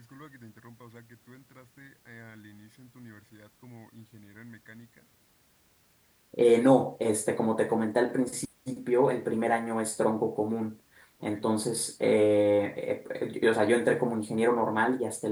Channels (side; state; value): both; identical; correlation 1.00